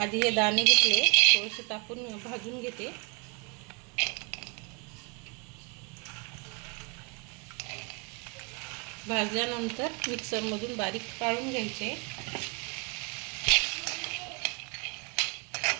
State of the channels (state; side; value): quieter; left; 33.2 dB